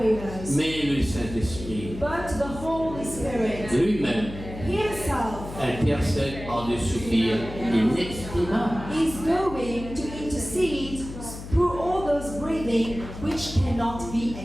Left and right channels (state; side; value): noise; left; hum, 11 dB below the sound